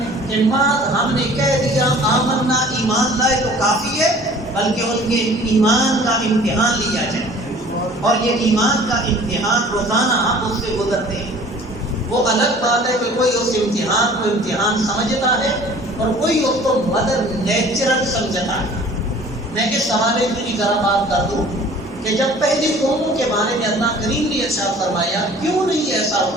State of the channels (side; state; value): both; normal; correlation 0.49